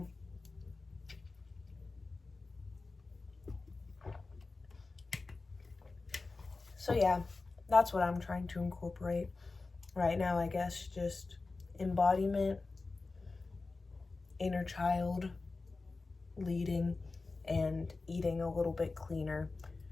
yeah, that's what I'm trying to incorporate right now, I guess, just embodiment, inner child, leading, and eating a little bit cleaner.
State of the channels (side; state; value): right; quieter; 3.7 dB